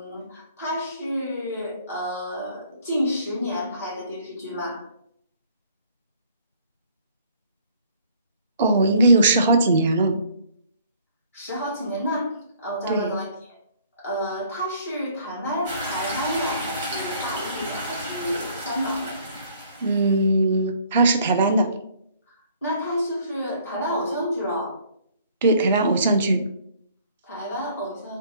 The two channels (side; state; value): both; inverted; correlation -0.59